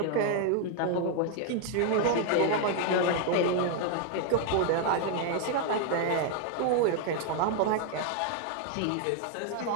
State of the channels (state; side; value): different; both; correlation 0.00